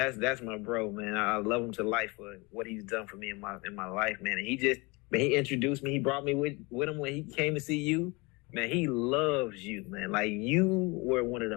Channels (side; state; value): right; quieter; 26.4 dB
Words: that's my bro, man. I love him to life for what he's done for me in my life, man. And he introduced me. He brought me with him when he came to see you. Man, he loves you, man. Like, you were one of